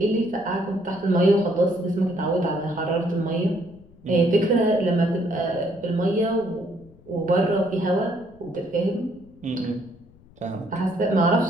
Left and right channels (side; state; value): left; noise; rumble, 26 dB below the sound